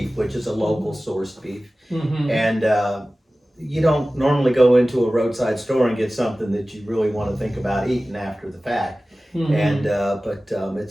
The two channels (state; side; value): normal; both; correlation 0.97